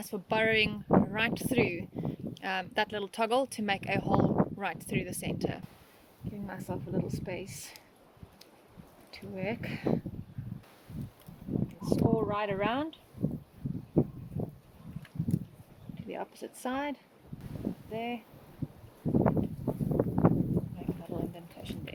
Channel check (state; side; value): identical; both; correlation 1.00